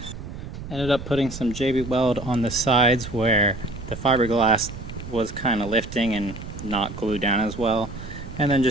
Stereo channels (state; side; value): noise; right; rumble, 11 dB below the sound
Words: Ended up putting some JB Weld on the sides where the fiberglass was kind of lifting and not glued down as well, and then